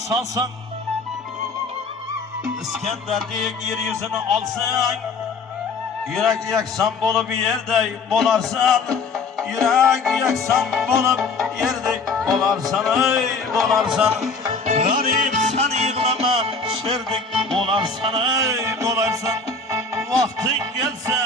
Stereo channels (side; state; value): right; quieter; 4.2 dB